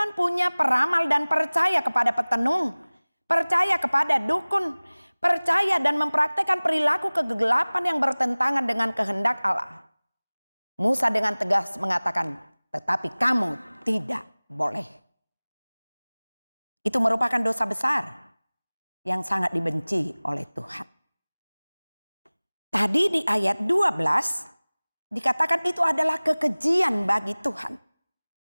punya peramal dan percaya kepada petenung, percaya kepada dukun, percaya dan mempraktekkan perilaku kegelapan yang bertentangan dengan kehendak Allah. Musa dengan tegas mengatakan, tetapi kamu tidak boleh. Itu merupakan dosa besar yang sangat dibenci oleh Tuhan. Tadi di ayat 12 dikatakan itu adalah kekejian bagi Tuhan.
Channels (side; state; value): both; inverted; correlation -1.00